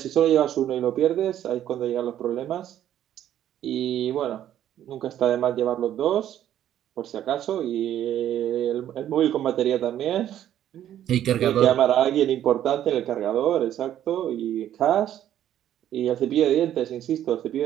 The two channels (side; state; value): left; quieter; 11.3 dB